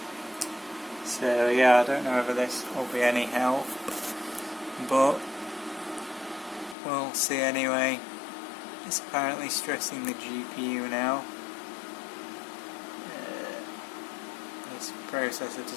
So yeah, I don't know whether this will be any help, but we'll see anyway. It's apparently stressing the GPU now. This processor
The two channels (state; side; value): drops out; right; at 6.8 s